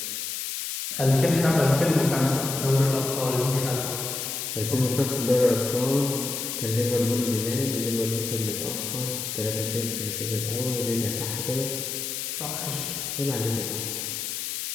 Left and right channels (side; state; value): left; noise; hiss, 4 dB below the sound